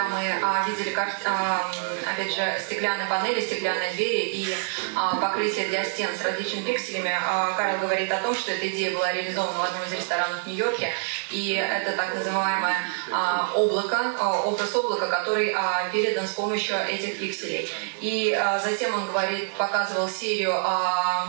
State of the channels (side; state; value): left; silent; digital silence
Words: мы видели, опять же, стеклянные панели, стеклянные двери и покрытие для стен с различными пикселями, Карл говорит о том, что эта идея была реализована в одном из ресторанов в Нью-Йорке, и это так называемое облако, образ облака, который передан с помощью этих пикселей. И затем он говорит, показывал серию